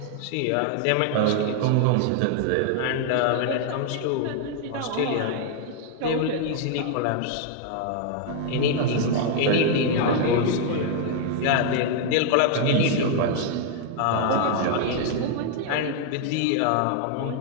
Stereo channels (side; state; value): both; different; correlation 0.00